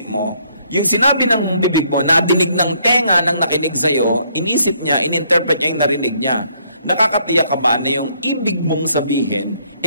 mo, yung sinabi ng bibig mo, nadinig ng tenga ng nakinig sa'yo, inisip niya, ininterpret niya yung narinig niya. Nakakatiyak ka ba na yung ibig mong sabihin,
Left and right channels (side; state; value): both; inverted; correlation -0.68